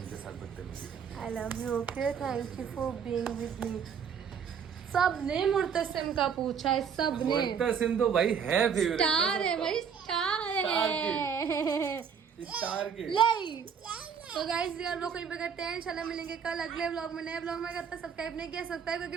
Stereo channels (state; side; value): quieter; left; 7.0 dB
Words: के साथ बदतमीजी करने I love you, okay? Thank you for being with me. सबने मुर्तसिम का पूछा है, का। सबने। मुर्तसिम तो भाई है फेवरेट, स्टार है भाई, स्टार है। स्टार के। ले तो गाइस यार लोग कहीं पे करते हैं, इंशाल्लाह मिलेंगे कल अगले व्लॉग में, नए व्लॉग में। करता सब्सक्राइब नहीं किया सब्सक्राइब करके